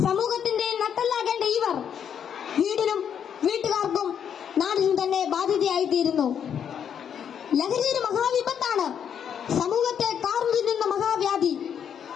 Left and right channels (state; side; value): quieter; right; 8.3 dB